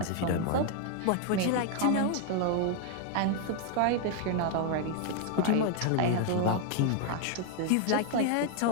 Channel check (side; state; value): both; different; correlation 0.01